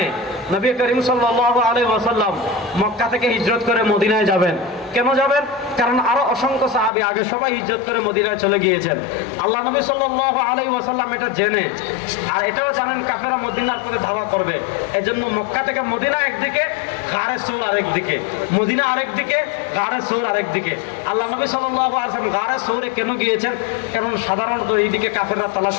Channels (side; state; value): right; drops out; at 6.9 s